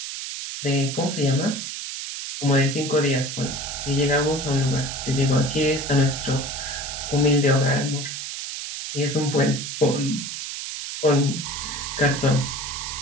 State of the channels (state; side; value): noise; right; hiss, 6 dB below the sound